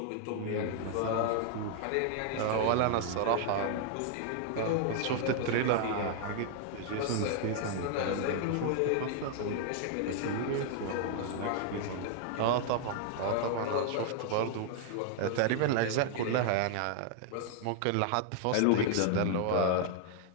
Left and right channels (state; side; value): different; both; correlation 0.00